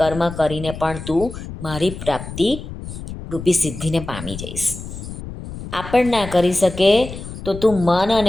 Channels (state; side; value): noise; left; rumble, 10 dB below the sound